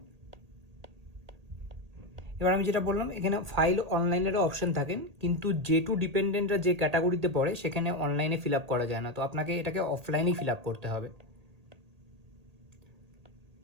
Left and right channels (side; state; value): left; late; 1.8 ms